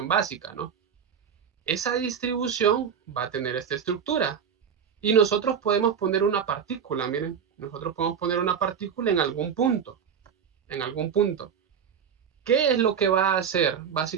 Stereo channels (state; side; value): quieter; left; 7.4 dB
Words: básica, ¿no? Esa distribución va a tener esta estructura. Y nosotros podemos poner una partícula, miren, nosotros podemos poner una partícula en algún punto, ¿Qué es lo que va a hacer